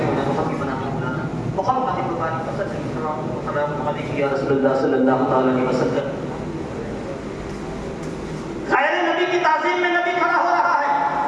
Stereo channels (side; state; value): both; identical; correlation 1.00